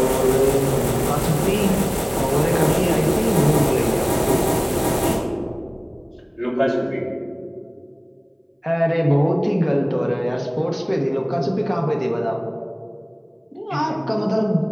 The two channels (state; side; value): identical; both; correlation 1.00